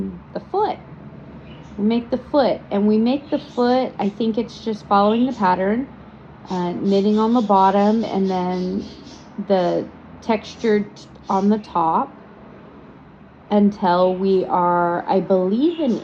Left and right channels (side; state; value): both; identical; correlation 1.00